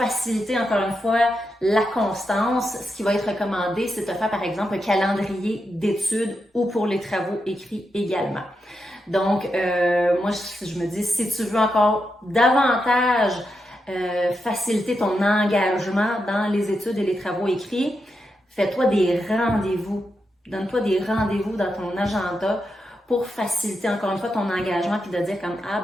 encore une fois, la constance, ce qui va être recommandé, c'est de faire, par exemple, un calendrier d'études ou pour les travaux écrits également. Donc, moi, je me dis, si tu veux encore davantage faciliter ton engagement dans les études et les travaux écrits, fais-toi des rendez-vous. Donne-toi des rendez-vous dans ton agenda pour faciliter encore une fois ton engagement puis de dire comme ah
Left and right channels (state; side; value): normal; both; correlation 0.86